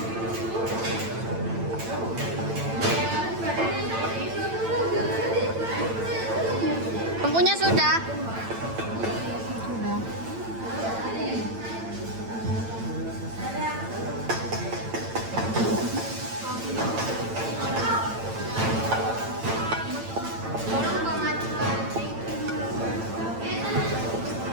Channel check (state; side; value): late; left; 8.9 ms